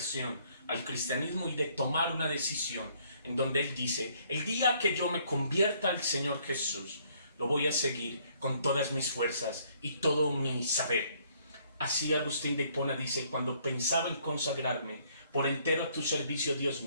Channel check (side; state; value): both; inverted; correlation -0.65